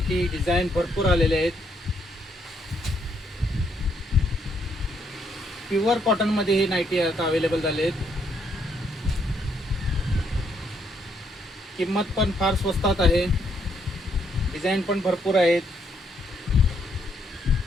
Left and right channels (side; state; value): both; normal; correlation 0.73